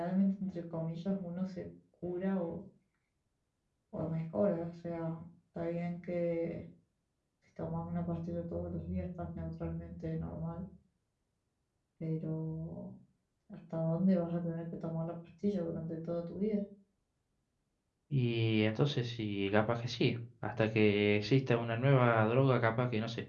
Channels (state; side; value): identical; both; correlation 1.00